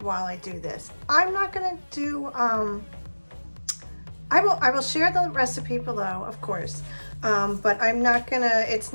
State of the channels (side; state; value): both; inverted; correlation -1.00